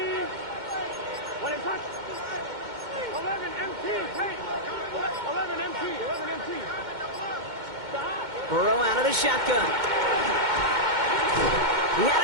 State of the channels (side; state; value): left; late; 2.1 ms